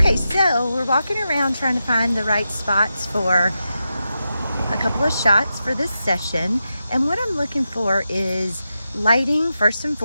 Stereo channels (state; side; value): inverted; both; correlation -0.89